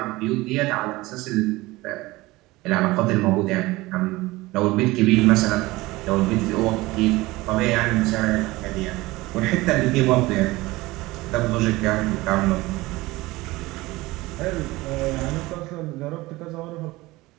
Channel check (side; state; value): left; quieter; 20.1 dB